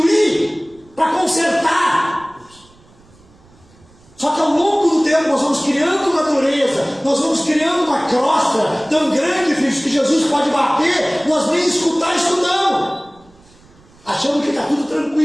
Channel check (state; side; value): noise; right; rumble, 29 dB below the sound